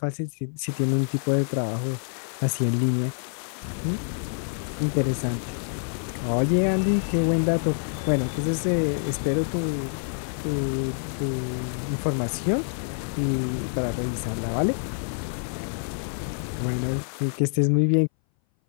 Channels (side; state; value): right; silent; 59 dB below the other